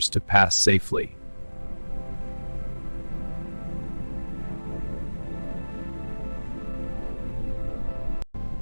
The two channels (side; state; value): both; inverted; correlation -1.00